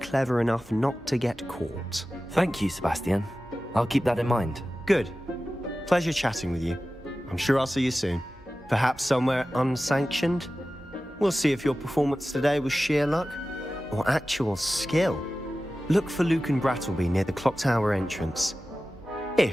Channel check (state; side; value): normal; both; correlation 0.95